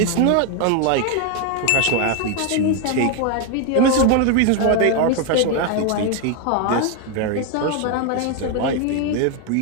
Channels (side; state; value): both; different; correlation 0.01